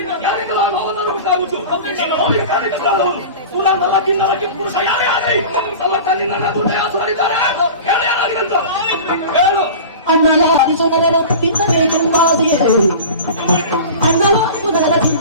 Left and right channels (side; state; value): both; inverted; correlation -0.35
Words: ಯಾರಿಗೆಲ್ಲ ನೋವನ್ನು ಉಂಟಾಗುತ್ತು ಕೂಡ ನಲಕ್ಕಿಂದಲಕ್ಕೆ ಪುರುಷ ಯಾರೇ ಆಗಲಿ ನಮ್ಮ ಕಣ್ಣಿನ ದುಡ್ಡಾಸುರಿದ್ದಾರೆ ಹೇಳು. ಅಣ್ಣಲಾರಿಸುನಗರ ತಿನ್ನಬೇಕೆಂಬಾದಿಯೇ, ಅಣ್ಣಲಾರಿಸುನಗರ